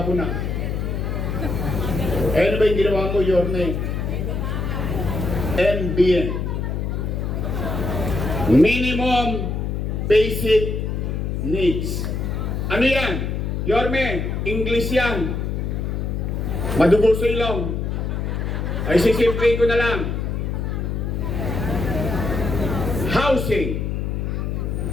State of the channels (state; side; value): noise; left; hum, 1 dB below the sound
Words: ko na. Ano ba yung ginawa mo, Yorme? MBN. Minimum Basic Needs. Ano yan? Yorme, English yan. Madugo sa ilong. Ay, sisimplin ko na lang. Housing,